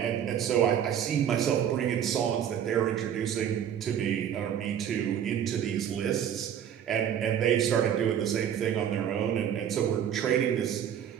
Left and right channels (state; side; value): quieter; left; 9.4 dB